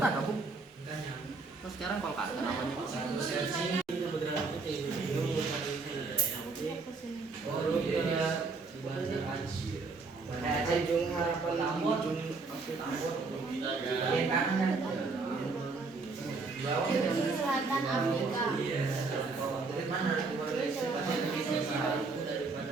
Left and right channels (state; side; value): quieter; left; 4.0 dB